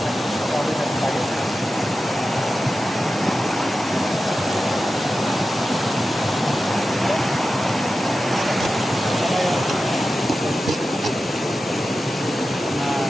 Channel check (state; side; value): normal; both; correlation 0.92